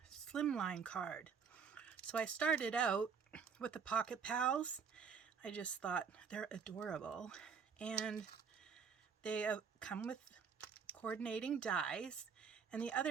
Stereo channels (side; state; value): left; quieter; 6.2 dB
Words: slimline card. So I started out with the Pocket Pals. I just thought they're adorable, and they come with coordinating dies. And the